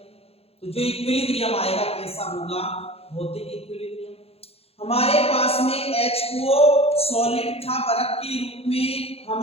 तो जो इक्विलिब्रियम आएगा कैसा होगा, भौतिक इक्विलिब्रियम। हमारे पास में H2O सॉलिड था बर्फ के रूप में,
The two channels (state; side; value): late; right; 0.29 ms